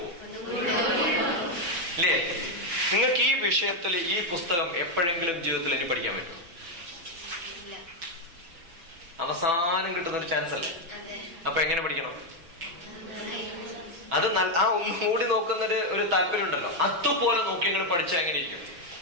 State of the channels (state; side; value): late; left; 6.0 ms